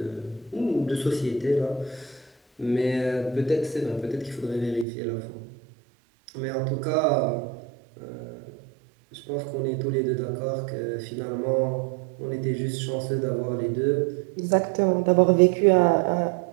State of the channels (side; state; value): left; drops out; at 4.9 s